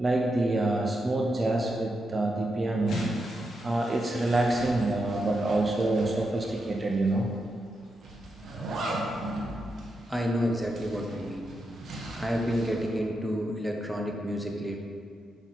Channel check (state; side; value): normal; both; correlation 0.85